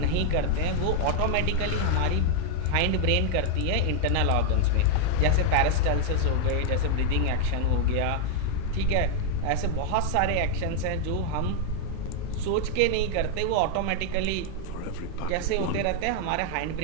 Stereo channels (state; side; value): different; both; correlation 0.00